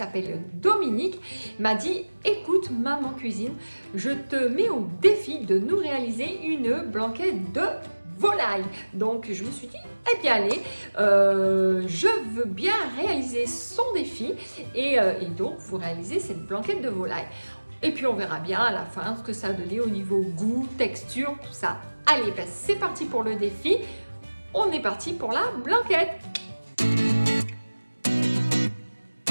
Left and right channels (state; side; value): inverted; both; correlation -1.00